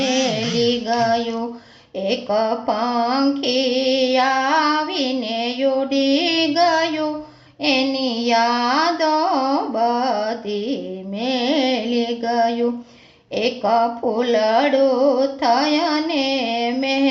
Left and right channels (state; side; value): identical; both; correlation 1.00